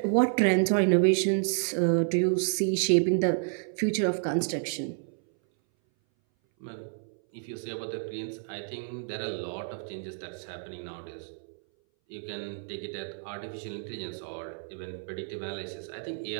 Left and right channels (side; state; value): left; silent; 58 dB below the other